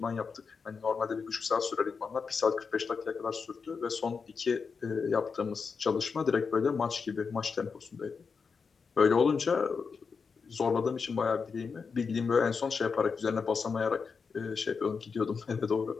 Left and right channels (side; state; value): right; quieter; 5.4 dB